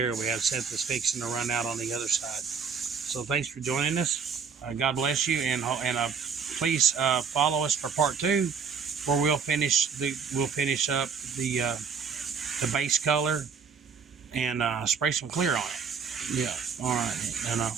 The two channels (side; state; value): left; quieter; 6.1 dB